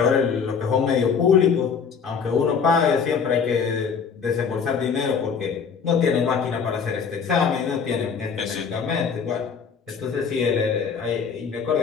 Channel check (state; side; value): quieter; right; 6.2 dB